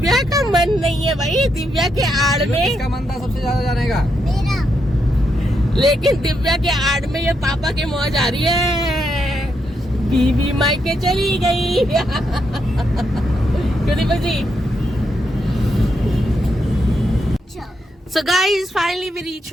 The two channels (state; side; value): normal; both; correlation 0.80